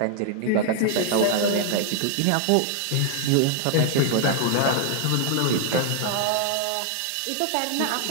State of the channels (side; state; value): both; different; correlation 0.00